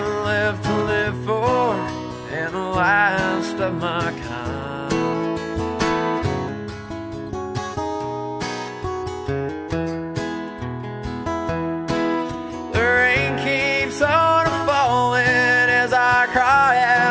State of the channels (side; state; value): both; identical; correlation 1.00